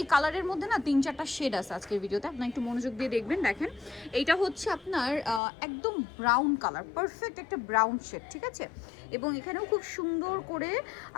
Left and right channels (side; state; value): right; drops out; at 5.4 s